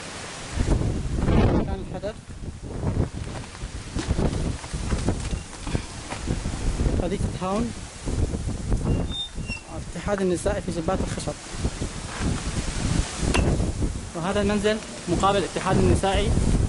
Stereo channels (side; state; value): both; identical; correlation 1.00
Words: مكان الحدث. حديقة هاون الاتحاد النسائي في جبات الخشب. وهذا المنزل مقابل الاتحاد النسائي،